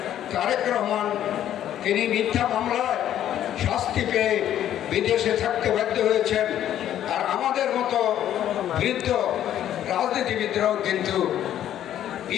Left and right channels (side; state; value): right; quieter; 11.2 dB